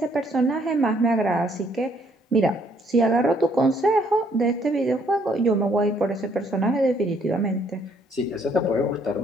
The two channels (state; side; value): normal; both; correlation 0.66